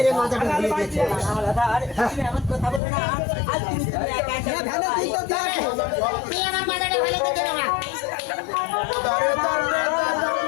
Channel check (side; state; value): right; drops out; at 2.8 s